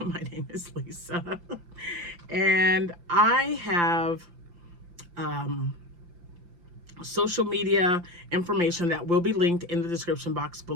name is Lisa, and I have social media information that will be linked in the description box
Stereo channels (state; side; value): late; left; 5.8 ms